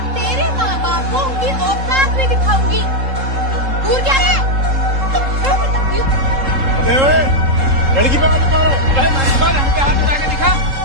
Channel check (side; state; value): left; late; 3.7 ms